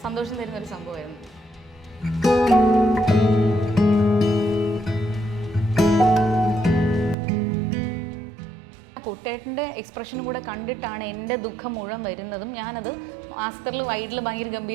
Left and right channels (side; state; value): left; drops out; at 7.2 s